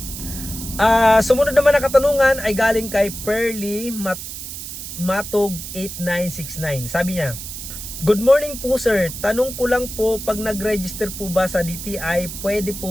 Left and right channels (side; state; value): right; noise; hiss, 9 dB below the sound